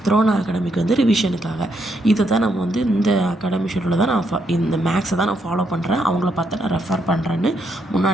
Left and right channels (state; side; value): normal; both; correlation 0.77